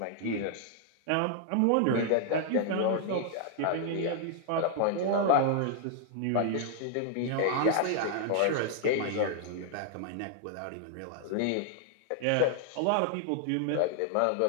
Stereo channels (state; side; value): different; both; correlation 0.00